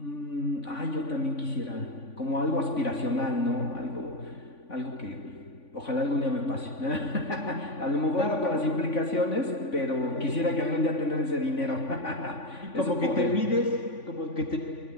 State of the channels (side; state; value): right; late; 3.5 ms